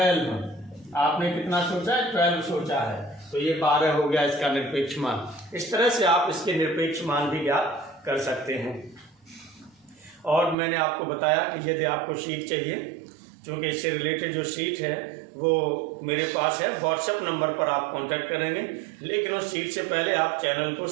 आपने कितना सोचा है, 12 सोचा है, तो ये 12 हो गया इसका निरपेक्ष मान। इस तरह से आप इसके निरपेक्ष मान भी ज्ञात कर सकते हैं। और मैंने आपको बताया कि यदि आपको शीट चाहिए, क्योंकि इससे रिलेटेड जो शीट है वो मेरे पास है, व्हाट्सएप नंबर पर आप कांटेक्ट करेंगे, लेकिन उस शीट से पहले आप चैनल को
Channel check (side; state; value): left; drops out; at 10.6 s